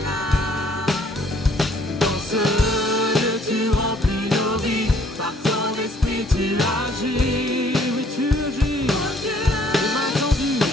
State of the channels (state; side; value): normal; both; correlation 0.61